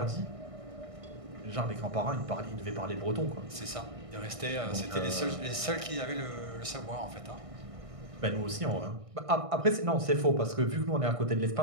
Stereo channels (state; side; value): late; left; 1.6 ms